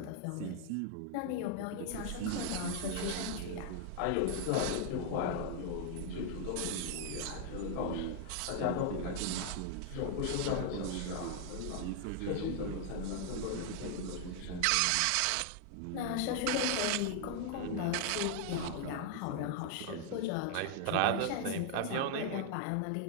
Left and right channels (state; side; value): different; both; correlation 0.00